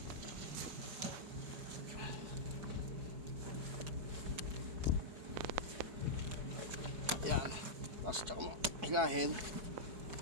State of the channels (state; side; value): late; left; 4.6 ms